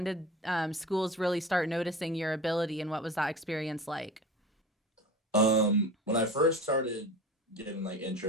did schools really start noticing your ability, and what was that experience like? When I first started getting like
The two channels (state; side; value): normal; both; correlation 0.34